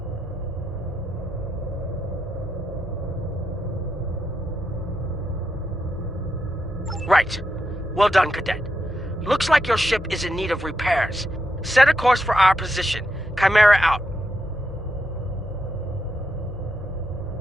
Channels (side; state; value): both; normal; correlation 0.83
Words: Right. Well done, Cadet. Looks like your ship is in need of repairs. Set a course for our position. Chimera out.